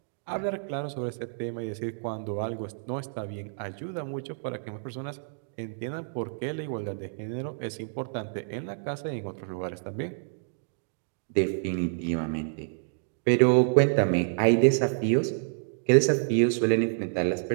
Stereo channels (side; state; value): left; silent; digital silence